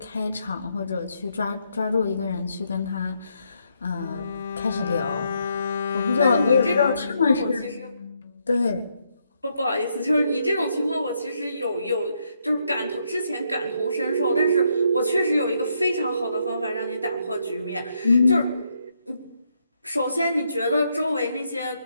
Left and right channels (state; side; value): inverted; both; correlation -0.77